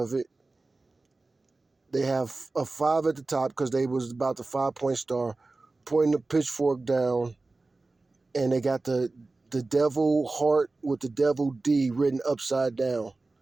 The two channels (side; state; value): left; quieter; 3.4 dB